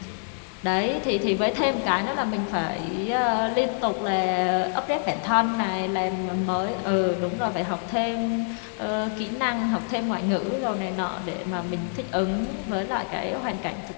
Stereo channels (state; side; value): silent; right; 56 dB below the other